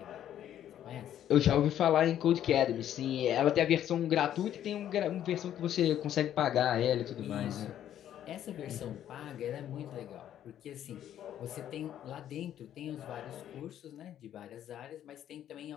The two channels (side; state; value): right; quieter; 10.9 dB